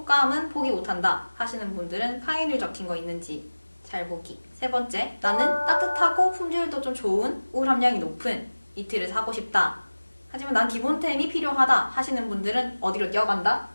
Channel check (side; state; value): both; inverted; correlation -1.00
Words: 포기 못한다 하시는 분들은 파인을 적힌 거 있는지 잘 보기. 세 번째, 나는 따뜻하고 품질도 좀 좋은 울 함량이 높은 니트를 사고 싶다. 하지만 난 기본템이 필요하다 하시는 분들은 어디로 뛰어간다?